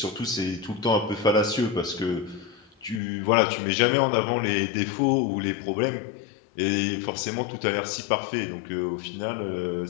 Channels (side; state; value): right; drops out; at 3.0 s